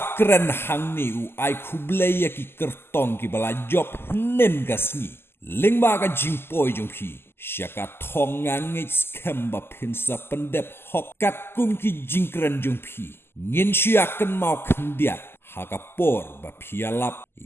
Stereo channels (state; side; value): late; right; 0.12 ms